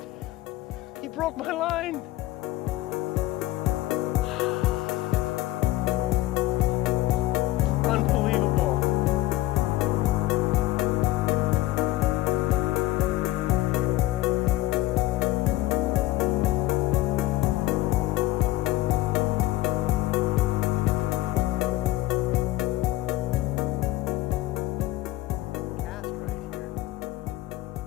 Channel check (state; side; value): quieter; right; 16.6 dB